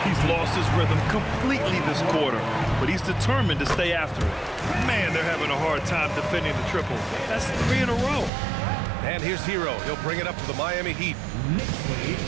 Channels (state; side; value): drops out; left; at 8.3 s